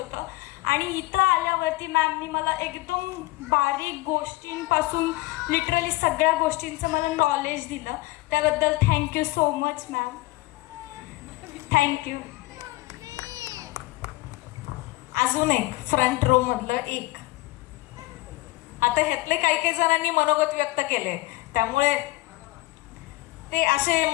आणि इथं आल्यावरती मॅमनी मला एकदम बारीक गोष्टींपासून लिटरली सगळ्या गोष्टींचं मला नॉलेज दिलं. त्याबद्दल thank you so much ma'am. Thank you. अजून एक फ्रंट रो मधलं एक. आता ह्यातले काही जणांनी मनोगत व्यक्त केले, त्यामुळे ते असे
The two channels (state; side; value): quieter; right; 20.4 dB